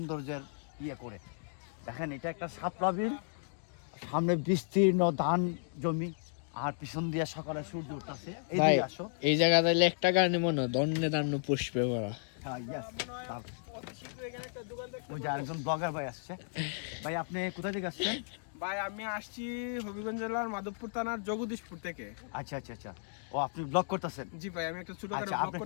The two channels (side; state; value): right; silent; digital silence